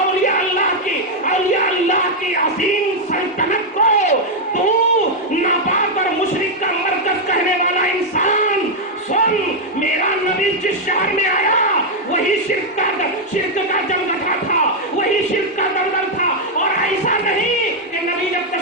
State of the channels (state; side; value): normal; both; correlation 0.00